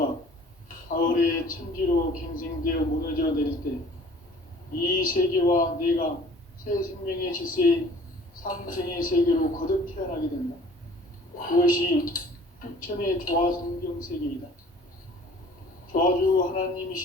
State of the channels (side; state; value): both; normal; correlation 0.50